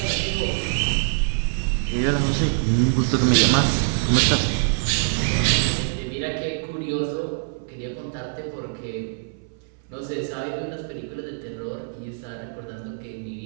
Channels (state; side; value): silent; left; 59 dB below the other